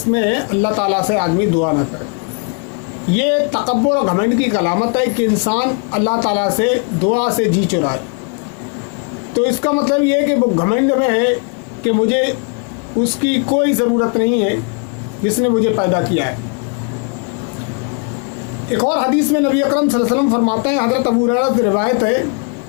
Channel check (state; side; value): quieter; right; 37.1 dB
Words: میں اللہ تعالیٰ سے آدمی دعا نہ کرے۔ یہ تکبر اور گھمنڈ کی علامت ہے کہ انسان اللہ تعالیٰ سے دعا سے جی چرائے۔ تو اس کا مطلب یہ ہے کہ وہ گھمنڈ میں ہے کہ مجھے اس کی کوئی ضرورت نہیں ہے جس نے مجھے پیدا کیا ہے۔ ایک اور حدیث میں نبی اکرم صلی اللہ علیہ وسلم فرماتے ہیں، حضرت ابو ہریرہ سے روایت ہے